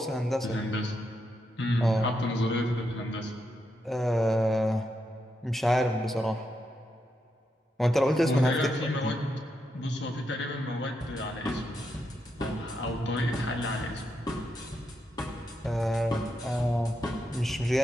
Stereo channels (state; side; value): normal; both; correlation 0.83